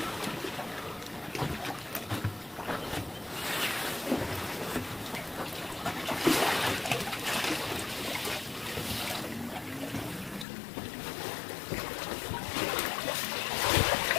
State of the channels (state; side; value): drops out; right; at 10.5 s